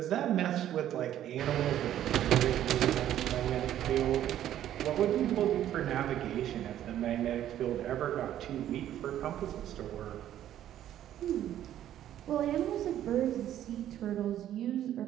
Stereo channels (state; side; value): quieter; left; 11.7 dB